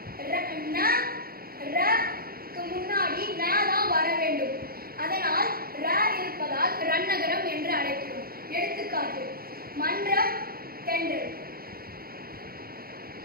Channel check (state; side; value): late; left; 0.44 ms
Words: க்கு முன்னாடி ந தான் வர வேண்டும். அதனால் ர இருப்பதால் ரன்னகரம் என்று அழைக்கிறோம். எடுத்துக்காட்டு மன்றம், தென்றல்.